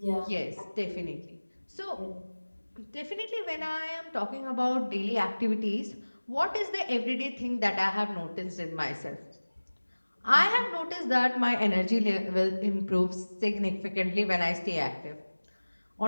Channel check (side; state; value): both; inverted; correlation -1.00